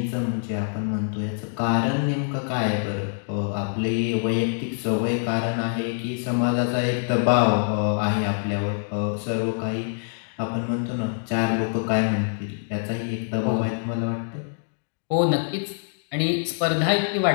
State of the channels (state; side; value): silent; right; digital silence